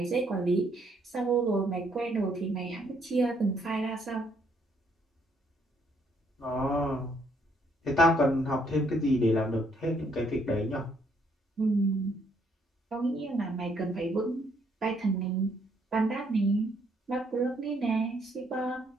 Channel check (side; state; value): both; normal; correlation 0.69